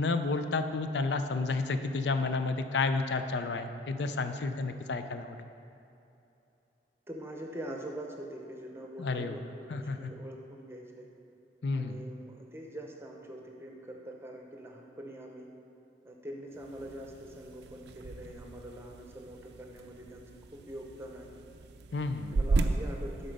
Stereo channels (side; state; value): both; normal; correlation 0.58